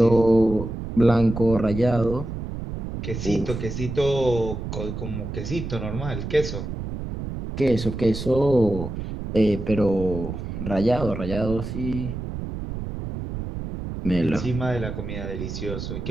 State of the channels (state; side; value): noise; right; rumble, 6 dB below the sound